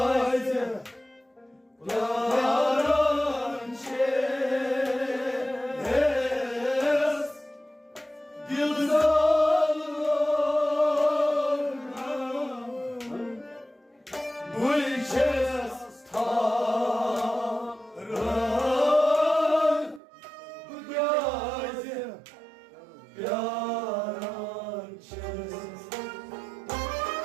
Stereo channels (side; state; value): left; drops out; at 20.0 s